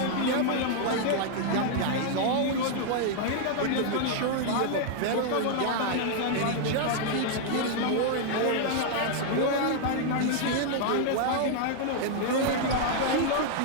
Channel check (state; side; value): different; both; correlation 0.00